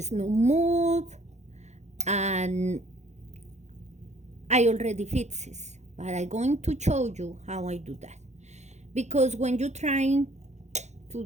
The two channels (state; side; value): late; left; 0.33 ms